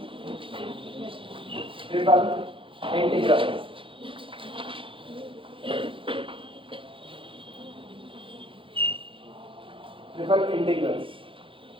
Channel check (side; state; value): left; late; 0.25 ms